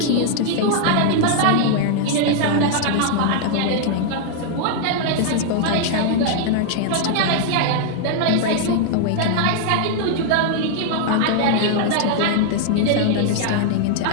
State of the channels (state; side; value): different; both; correlation -0.01